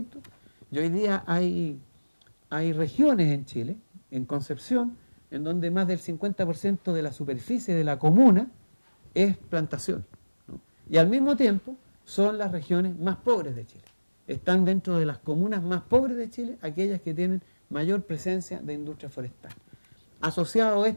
y hoy día hay regiones en Chile, en Concepción, en donde más del 50% de la superficie de la comuna es plantación, ¿no? Y al mismo tiempo son las regiones más pobres de Chile. Están dentro de las comunas más pobres de Chile aquellas que tienen mayor presencia de industria forestal. Asociado a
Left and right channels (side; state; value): both; inverted; correlation -1.00